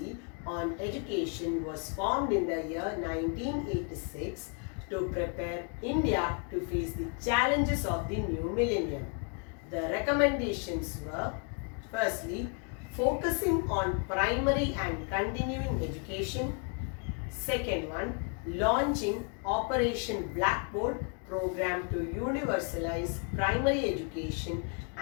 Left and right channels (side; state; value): right; quieter; 38.8 dB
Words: on education was formed in the year 1986 to prepare India to face the challenges of the new millennium. The recommendations were, firstly, focusing on primary and continuing education. Second one, launching Operation Blackboard program to universalize primary education